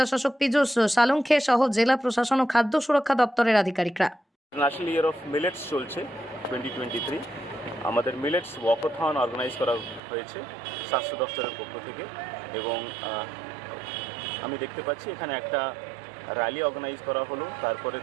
শাসক পীযূষ সালুঙ্খে সহ জেলা প্রশাসন ও খাদ্য সুরক্ষা দপ্তরের আধিকারিকরা। ন্যাশনাল ইয়ার অফ মিলেটস চলছে 2023। আমাদের মিলেটস ওয়াকাথন অর্গানাইজ করা হয়েছে স্বাস্থ্য দপ্তরের পক্ষ থেকে, এবং আমি দেখতে পাচ্ছি এখানে একটা র্যালি অর্গানাইজ করা হলো। তারপরে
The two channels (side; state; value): left; drops out; at 10.0 s